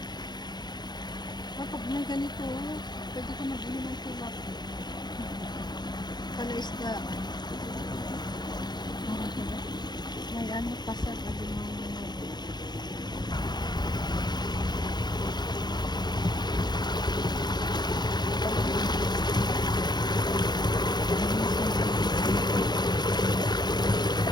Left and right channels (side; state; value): right; late; 0.21 ms